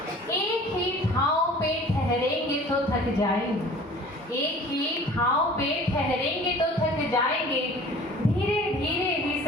एक ही ठाव पे ठहरेंगे तो थक जाएंगे, एक ही ठाव पे ठहरेंगे तो थक जाएंगे, धीरे धीरे ही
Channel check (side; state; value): both; normal; correlation 0.46